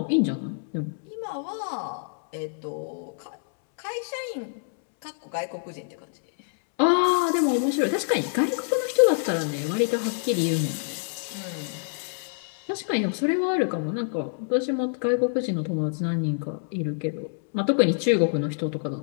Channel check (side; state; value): right; silent; 61 dB below the other